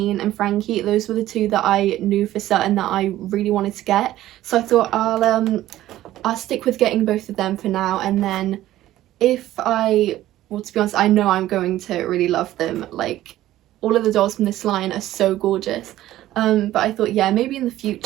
and Frankie. Those were the two that I knew for certain that I really wanted to get. So I thought I'll stick with getting both of them for now, and then well, to be honest, I know I'm going to really love them. Like, all of the dolls from this line are so gorgeous. But I thought, yeah, maybe in the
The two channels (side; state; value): left; quieter; 14.4 dB